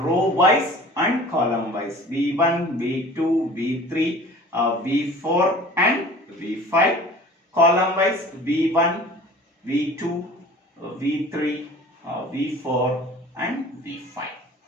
row wise and column wise. V1, V2, V3, V4 and V5. Column wise V1, V2, V3, V4 and V5.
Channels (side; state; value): both; normal; correlation 0.44